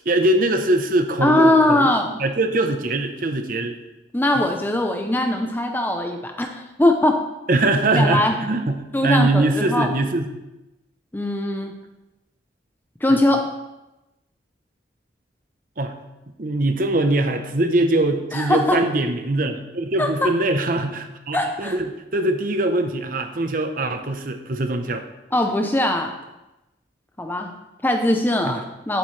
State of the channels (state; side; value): normal; both; correlation 0.59